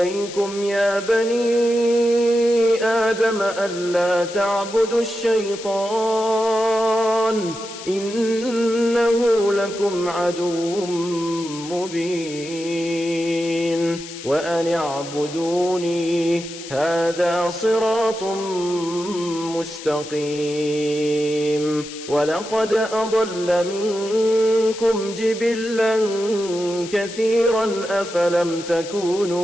يا بني آدم ألا تعبدوا الشيطان إنه لكم عدو مبين وأن اعبدوني هذا صراط مستقيم ولقد أضل منكم جبلا كثيرا أفلم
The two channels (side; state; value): left; noise; hiss, 13 dB below the sound